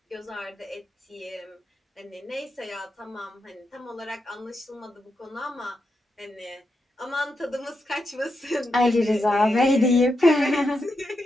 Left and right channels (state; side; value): normal; both; correlation 0.85